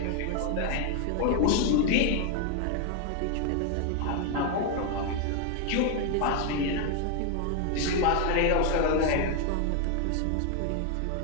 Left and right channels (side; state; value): both; different; correlation 0.01